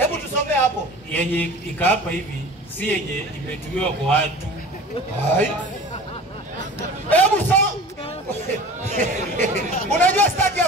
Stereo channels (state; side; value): normal; both; correlation 0.40